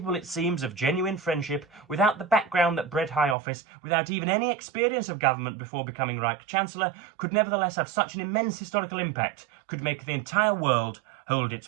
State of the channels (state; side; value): drops out; left; at 3.4 s